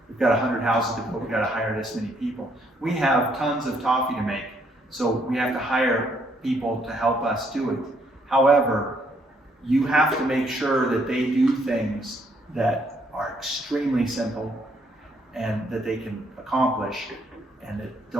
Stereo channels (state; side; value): normal; both; correlation 0.70